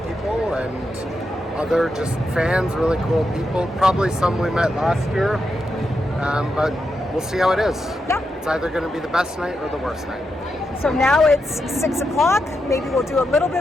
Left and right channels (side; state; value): both; normal; correlation 0.85